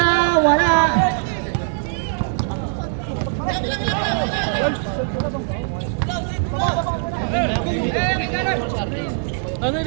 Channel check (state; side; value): silent; left; 65 dB below the other